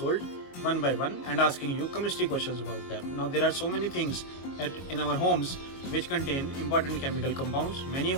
one by one and asking you chemistry questions about them. Now there are so many things in our homes which contain important chemical compounds. Many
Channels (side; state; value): right; late; 22 ms